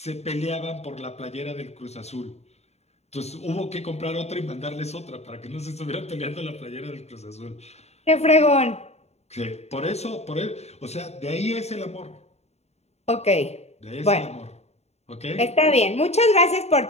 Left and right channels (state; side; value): late; right; 0.31 ms